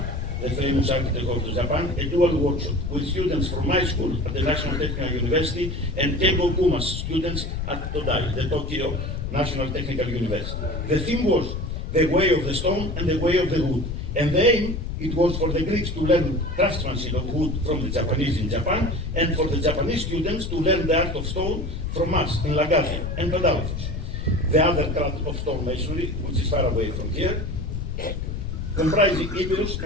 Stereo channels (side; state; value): left; noise; rumble, 4 dB below the sound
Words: the famous architect of Japan, a dual workshop with students from my school at the National Technical University and Kengo Kuma's students at Todai, the Tokyo National Technical University. The theme was the way of the stone and the way of the wood. And the aim, it was for the Greeks to learn craftsmanship of wood from the Japanese in Japan, and for the Japanese students to learn the art of stone from us in Laggadhi and Padalphos. The other craft of stonemasonry, which is far away from here, comprising Epirus